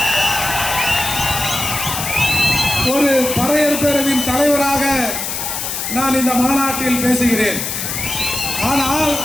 ஒரு பறையர் பேரவையின் தலைவராக நான் இந்த மாநாட்டில் பேசுகிறேன். ஆனால்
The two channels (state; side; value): noise; left; hiss, 4 dB below the sound